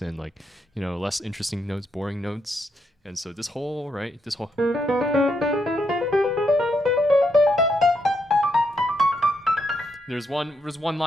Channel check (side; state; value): both; normal; correlation 0.79